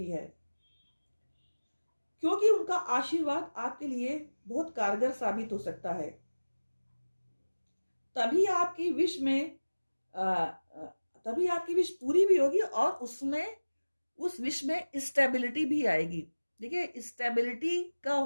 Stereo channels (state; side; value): inverted; both; correlation -1.00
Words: है, क्योंकि उनका आशीर्वाद आपके लिए बहुत कारगर साबित हो सकता है। तभी आपकी विश में तभी आपकी विश पूरी भी होगी, और उसमें उस विश में स्टेबिलिटी भी आएगी। देखिए, स्टेबिलिटी का